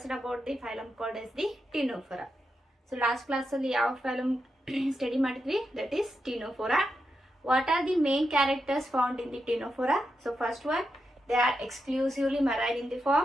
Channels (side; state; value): both; normal; correlation 0.86